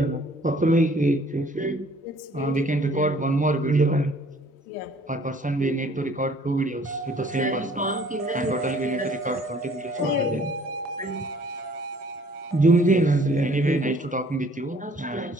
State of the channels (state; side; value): normal; both; correlation 0.56